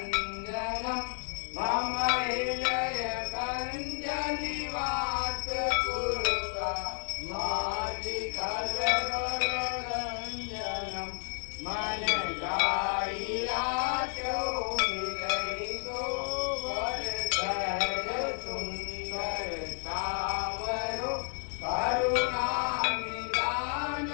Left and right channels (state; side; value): silent; right; digital silence